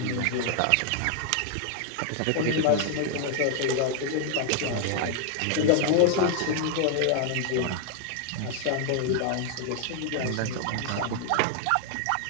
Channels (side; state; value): both; different; correlation 0.00